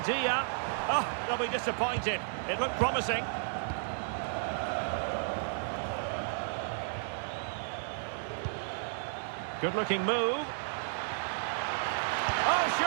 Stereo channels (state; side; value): silent; left; digital silence